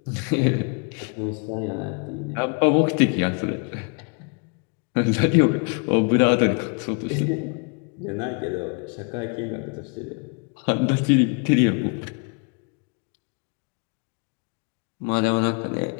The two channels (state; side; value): quieter; right; 35.3 dB